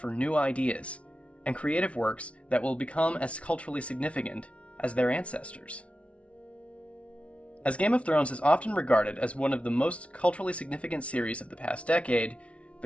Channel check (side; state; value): right; late; 0.062 ms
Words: new ideas and creative works that will become as culturally significant as their ancestors. As Game of Thrones is often regarded as one of the most culturally significant series of the past decade,